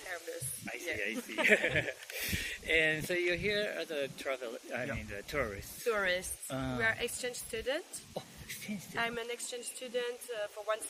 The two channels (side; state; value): both; identical; correlation 1.00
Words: I see, Yes. I see. And so you're here as a the tourist. Tourists. We are exchange students. Oh, exchange student. I'm an exchange student for 1